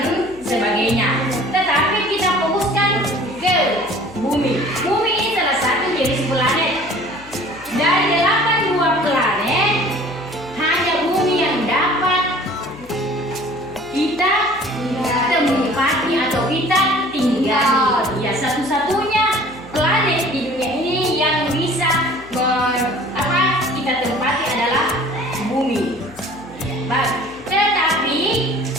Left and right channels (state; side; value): noise; left; hum, 22 dB below the sound